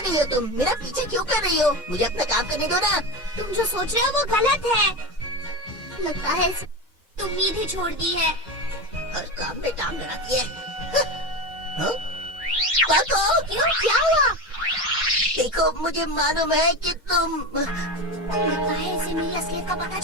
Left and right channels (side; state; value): both; normal; correlation 0.22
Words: रही हो तुम? मेरा पीछे क्यों कर रही हो? मुझे अपना काम करने दो ना। तुम जो सोच रहे हो वो गलत है। लगता है तुम उम्मीद ही छोड़ दी है। हर काम में टांग लगाती है। हाँ? पाको, क्यों, क्या हुआ? देखो, मुझे मालूम है कि तुम। लगता है इसे मेरी असलियत का पता